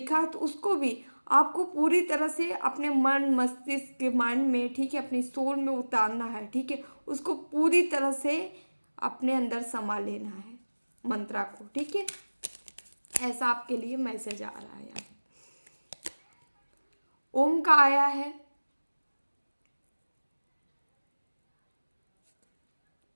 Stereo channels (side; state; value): both; inverted; correlation -1.00